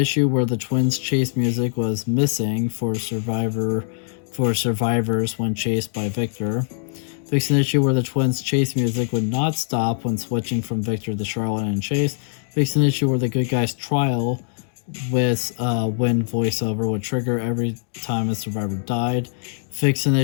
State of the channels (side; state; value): right; silent; digital silence